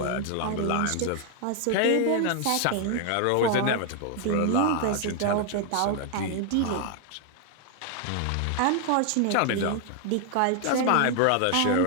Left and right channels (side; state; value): both; different; correlation 0.00